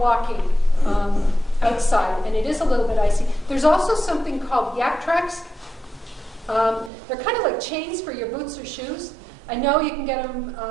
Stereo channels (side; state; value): left; drops out; at 6.9 s